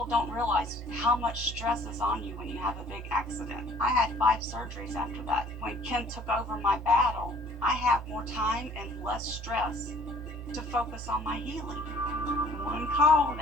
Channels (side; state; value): both; normal; correlation 0.55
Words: don't realize how much stress is on you when you have a big accident. I had 5 surgeries after that. When Ken took over my battle, I have more time and less stress to focus on my healing. One call,